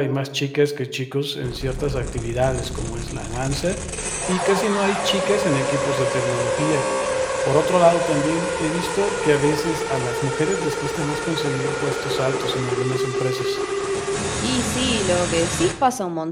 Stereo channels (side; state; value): both; identical; correlation 1.00